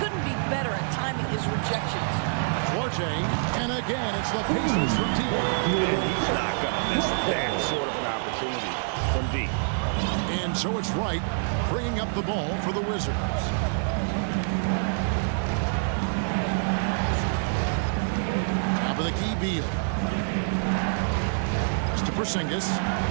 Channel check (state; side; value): silent; left; digital silence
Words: be better at timing his rejections. Duarte, and again, it's the Pacers from deep. And he's not going to miss that sort of an opportunity from deep. And so it's Wright bringing up the ball for the Wizards. Top of the key, Beal. Just to Porzingis.